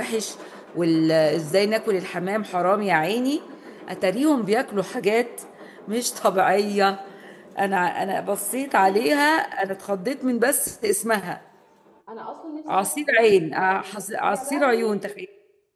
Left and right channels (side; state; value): both; identical; correlation 1.00